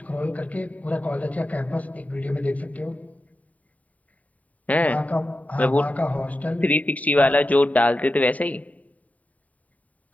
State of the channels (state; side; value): late; right; 0.070 ms